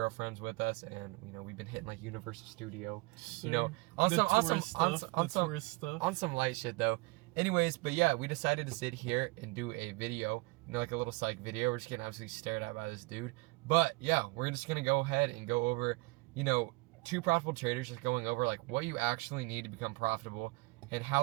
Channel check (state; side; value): quieter; left; 25.6 dB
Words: with us, and we've been hitting like Universal Studio, Sure. on The some tourist stuff. on some light shit though. Anyways, but yeah, we decided to sit here and do a video, like a little psych video. We're just getting absolutely stared at by this dude. But yeah, we're just gonna go ahead and go over, two profitable traders, just going over like what you actually need to become profitable and